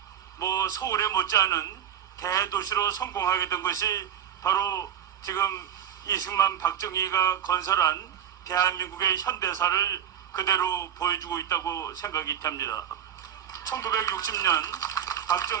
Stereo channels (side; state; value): left; quieter; 9.7 dB